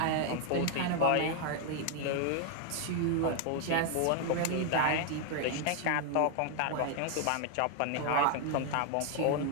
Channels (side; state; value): both; different; correlation 0.00